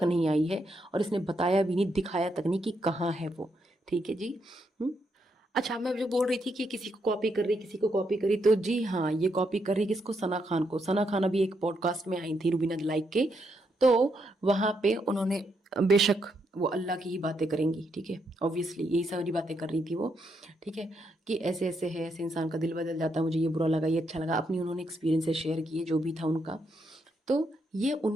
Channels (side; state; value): both; normal; correlation 0.79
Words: नहीं आई है, और इसने बताया भी नहीं, दिखाया तक नहीं कि कहाँ है वो, ठीक है जी। अच्छा, मैं जो बोल रही थी कि किसी को कॉपी कर रही, किसी को कॉपी करी, तो जी हाँ, ये कॉपी कर रही किसको? सना खान को। सना खान अभी एक पॉडकास्ट में आई थी रुबीना लाइक के, तो वहां पे उन्होंने, बेशक वो अल्लाह की ही बातें करेंगी, ठीक है, ऑब्वियसली यही सारी बातें कर रही थी वो, ठीक है, कि ऐसे ऐसे है, ऐसे इंसान का दिल बदल जाता है, मुझे ये बुरा लगा, ये अच्छा लगा, अपनी उन्होंने एक्सपीरियंसेस शेयर किए जो भी था उनका। तो ये